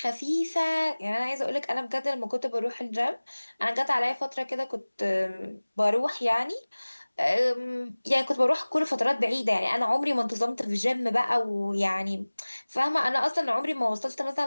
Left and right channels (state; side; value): inverted; both; correlation -1.00